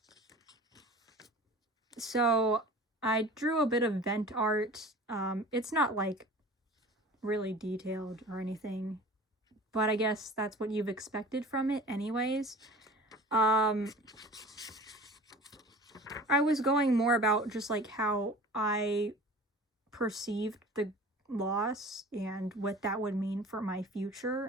So, I drew a bit of vent art. It's not, like, really detailed or anything, but I guess that's what you've expected from it anyways. I was going more about just, like, how I perceived the loss and what that would mean for my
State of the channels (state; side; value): normal; both; correlation 0.41